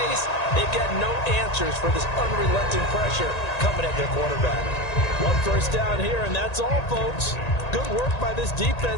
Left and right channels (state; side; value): late; right; 1.9 ms